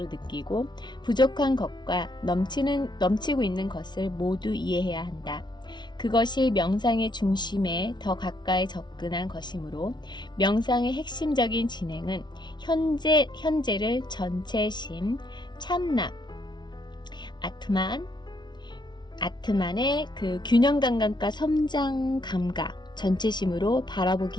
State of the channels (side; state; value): right; late; 0.21 ms